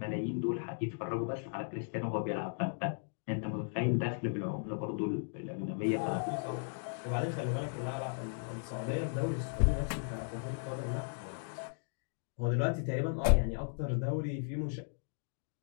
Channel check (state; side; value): silent; right; digital silence